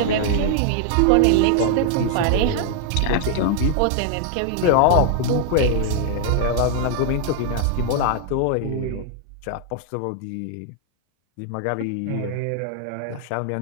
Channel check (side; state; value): both; different; correlation 0.00